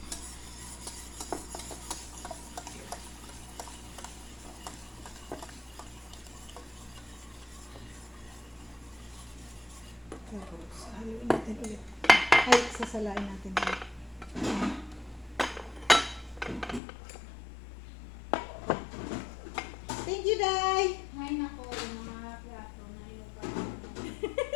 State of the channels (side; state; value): right; drops out; at 16.8 s